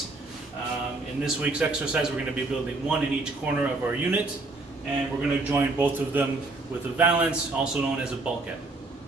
In this week's exercise, we're going to be building one in each corner of our unit, and we're going to join both of them with a valance, also known as a bulkhead.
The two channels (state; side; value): quieter; left; 3.2 dB